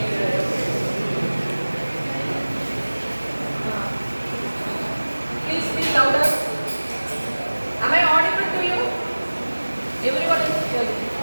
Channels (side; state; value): both; inverted; correlation -1.00